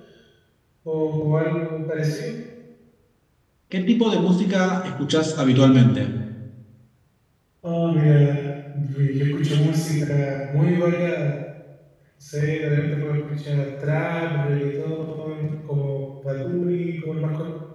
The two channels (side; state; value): both; identical; correlation 1.00